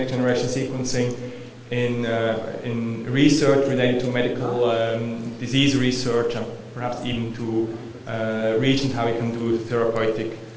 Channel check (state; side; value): identical; both; correlation 1.00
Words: generation sequencing in research related to medical disease research, and perhaps even to regions how you can do therapeutic,